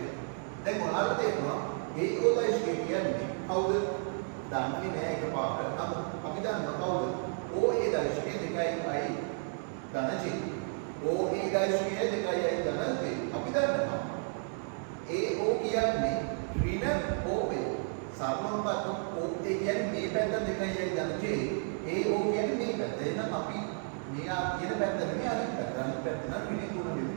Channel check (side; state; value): left; silent; 55 dB below the other